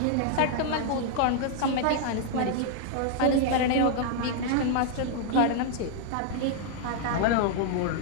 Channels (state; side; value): different; both; correlation 0.00